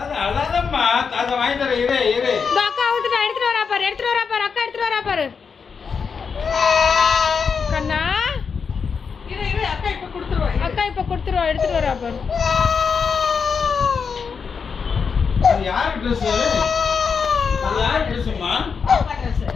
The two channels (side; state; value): right; quieter; 5.8 dB